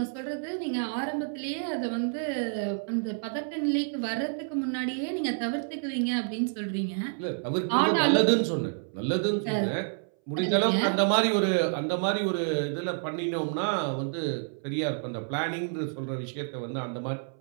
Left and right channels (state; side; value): silent; left; 59 dB below the other